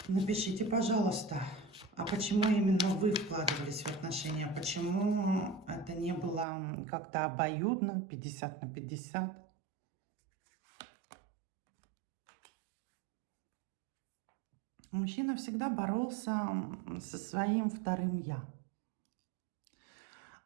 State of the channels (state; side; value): drops out; left; at 6.5 s